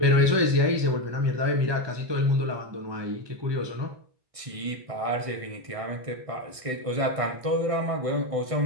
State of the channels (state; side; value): late; left; 1.6 ms